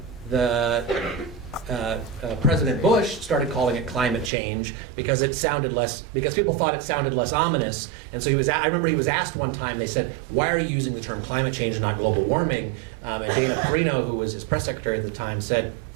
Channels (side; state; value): left; drops out; at 4.3 s